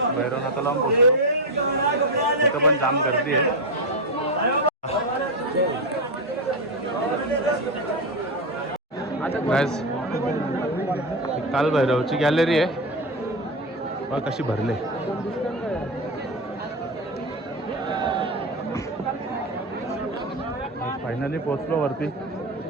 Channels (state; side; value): normal; both; correlation 0.14